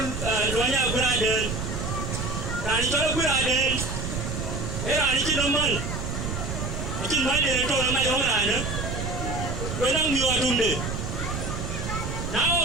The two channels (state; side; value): noise; right; rumble, 4 dB below the sound